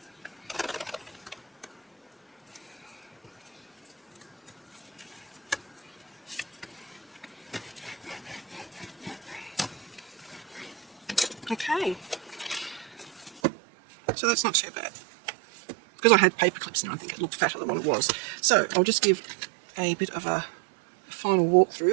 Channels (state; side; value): drops out; left; at 13.4 s